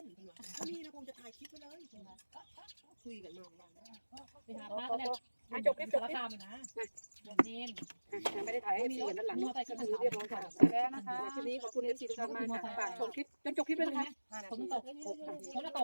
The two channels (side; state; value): both; inverted; correlation -1.00